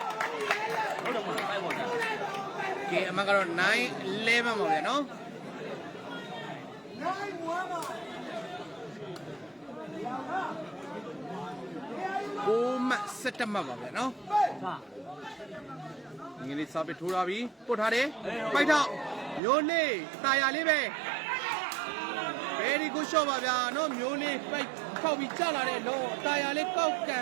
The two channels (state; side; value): drops out; left; at 19.4 s